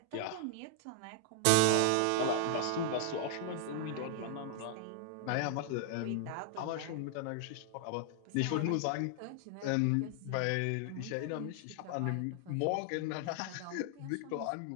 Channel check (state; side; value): different; both; correlation 0.00